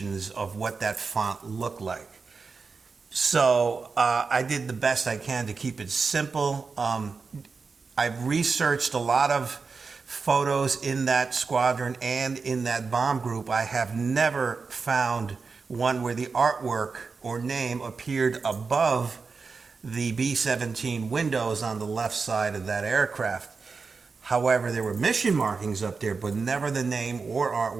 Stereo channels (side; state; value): left; quieter; 4.7 dB